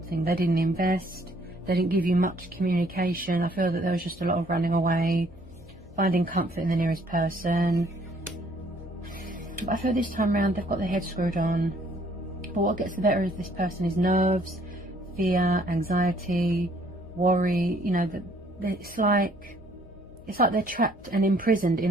They didn't invest, they didn't give you much communication. I feel that there was just a lot of running away, finding comfort in the nearest person. But I feel this time around they've got their head screwed on. But what gets the better of this person is nerves, fear, anxiety, worry. You know, that it's like they're trapped and imprisoned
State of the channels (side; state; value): left; noise; hum, 22 dB below the sound